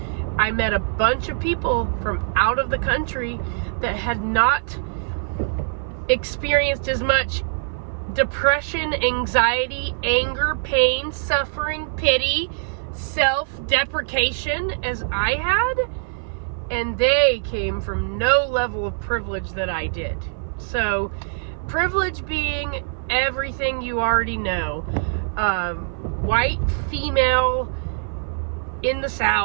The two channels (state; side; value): silent; left; 56 dB below the other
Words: I met a bunch of people from out of the country that had not experienced as much depression, anxiety, anger, pain, suffering, pity, self-deprecation as I had, and they came from no level of privilege that I did. So, privilege being everything you already know. White, female, in the